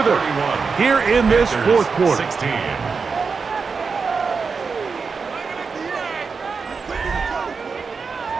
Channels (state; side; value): quieter; left; 5.1 dB